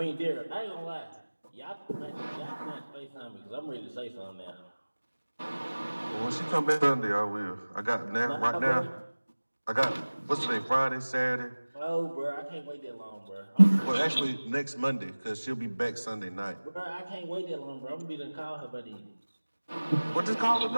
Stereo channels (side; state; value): both; inverted; correlation -1.00